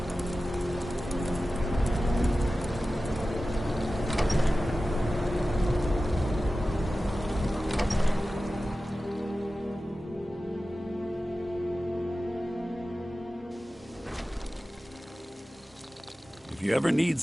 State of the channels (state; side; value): normal; both; correlation 0.95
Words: If you ever need